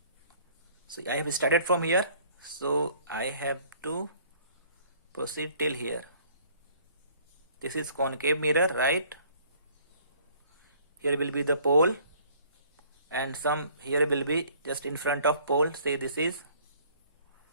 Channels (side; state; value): both; inverted; correlation -0.56